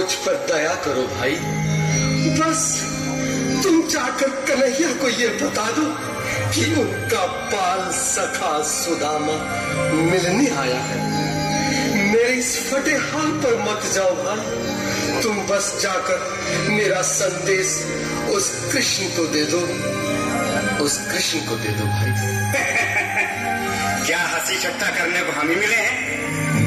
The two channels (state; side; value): identical; both; correlation 1.00